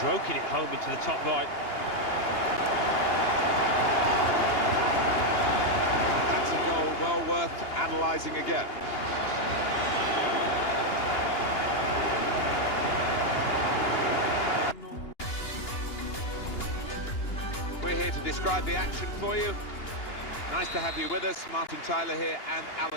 it home into the top right. That's a goal well worth Analysing again. We're here to describe the action for you. Nice to have you with us. Martin Tyler here and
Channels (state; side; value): late; right; 2.8 ms